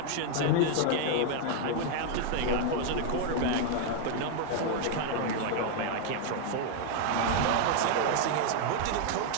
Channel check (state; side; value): different; both; correlation 0.00